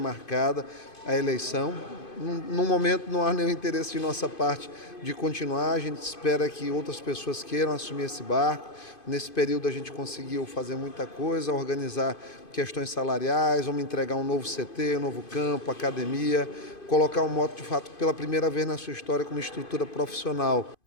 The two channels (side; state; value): right; late; 2.5 ms